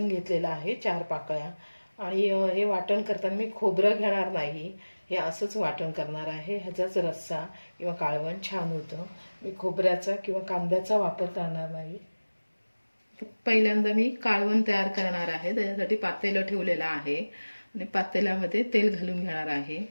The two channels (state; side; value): inverted; both; correlation -1.00